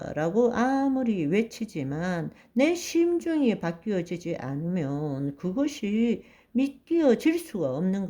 라고 아무리 외치지만 내 심중이 바뀌어지지 않으면 그것이 믿겨질 수가 없는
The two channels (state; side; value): identical; both; correlation 1.00